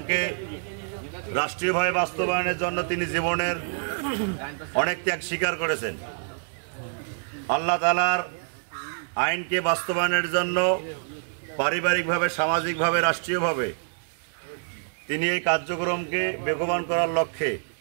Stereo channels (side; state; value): left; silent; 61 dB below the other